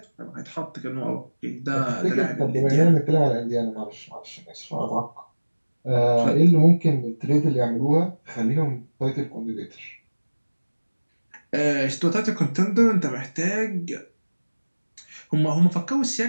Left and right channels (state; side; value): inverted; both; correlation -1.00